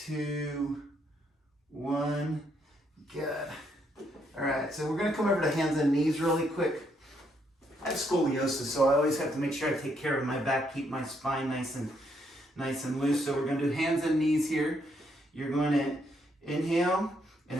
1. Good. All right, so we're gonna come over to hands and knees really quick. I have scoliosis, so I always have to make sure I take care of my back, keep my spine nice and loose. So we're gonna do hands and knees here. You're going to inhale and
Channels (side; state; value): both; normal; correlation 0.74